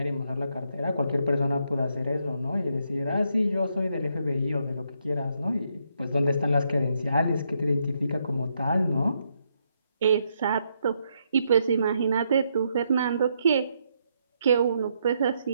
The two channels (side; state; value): both; inverted; correlation -0.77